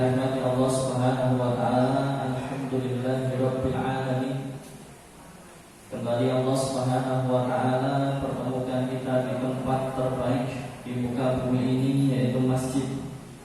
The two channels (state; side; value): identical; both; correlation 1.00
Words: Allah Subhanahu wa taala, alhamdulillahirabbil alamin. Kembali Allah Subhanahu wa taala pertemukan kita di tempat terbaik di muka bumi ini, yaitu masjid.